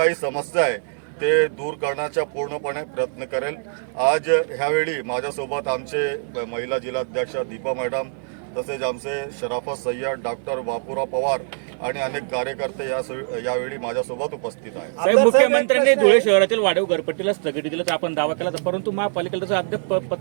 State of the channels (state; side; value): silent; left; digital silence